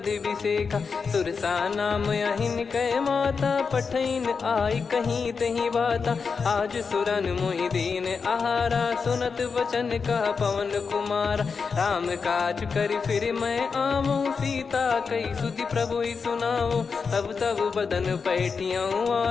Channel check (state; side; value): quieter; right; 5.3 dB